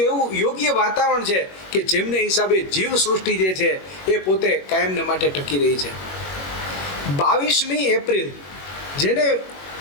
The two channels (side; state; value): right; late; 21 ms